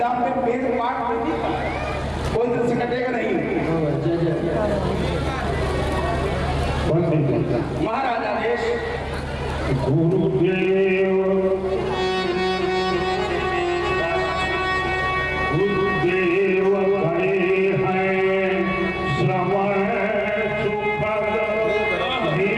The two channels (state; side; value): identical; both; correlation 1.00